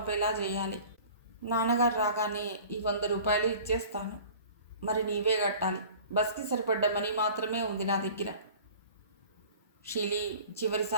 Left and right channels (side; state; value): both; inverted; correlation -0.45